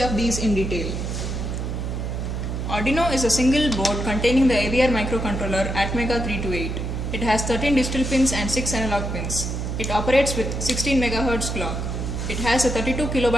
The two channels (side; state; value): right; noise; hum, 3 dB below the sound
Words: these in detail. Arduino is a single board containing the AVR microcontroller Atmega328. It has 13 digital pins and 6 analog pins. It operates with 16 MHz clock. It has a 32